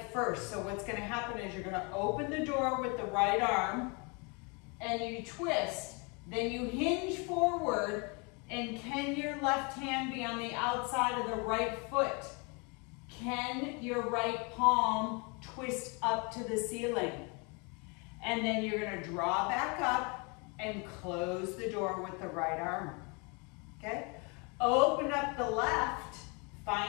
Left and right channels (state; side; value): quieter; right; 31.8 dB